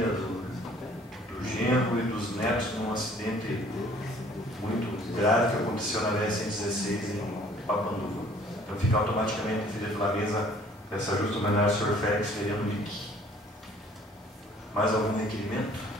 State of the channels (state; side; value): normal; both; correlation 0.56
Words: do genro e dos netos num acidente muito grave que aconteceu na BR-116 em Papanduva. Então fica automaticamente definido pela mesa essa justa homenagem ao senhor Félix Veriano Mick. Mais algum requerimento?